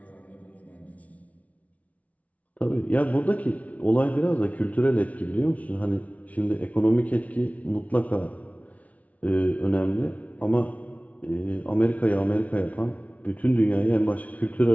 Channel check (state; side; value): late; right; 0.068 ms